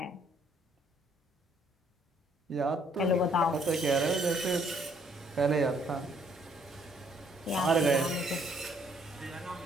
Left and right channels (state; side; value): normal; both; correlation 0.66